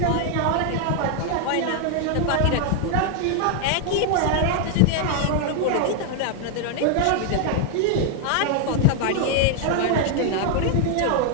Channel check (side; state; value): both; different; correlation 0.00